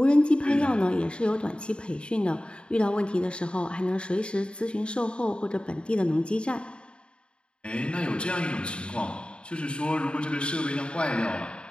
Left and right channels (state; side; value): late; right; 0.054 ms